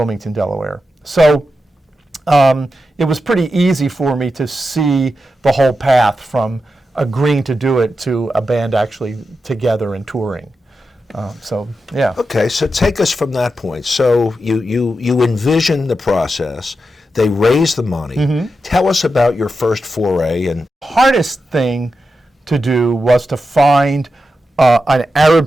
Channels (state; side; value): normal; both; correlation 0.89